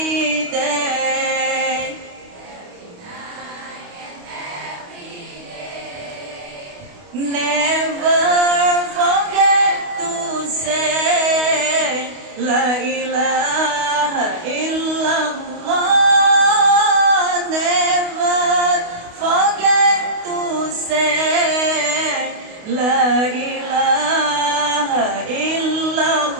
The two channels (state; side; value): late; left; 28 ms